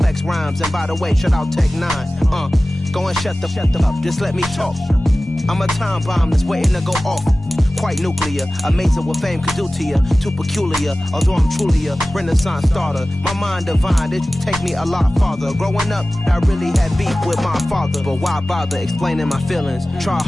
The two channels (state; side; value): normal; both; correlation 0.97